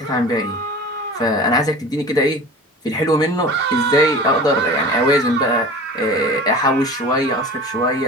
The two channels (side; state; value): both; normal; correlation 0.37